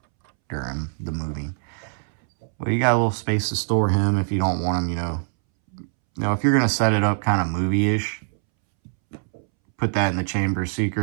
during the movie. Well, you got a little space to store him if you don't want him, you know, if you're going to set it up kind of movie-ish, put that in the Chamber of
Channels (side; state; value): left; silent; 63 dB below the other